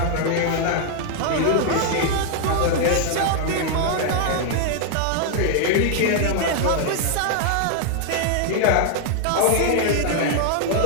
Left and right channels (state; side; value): different; both; correlation 0.00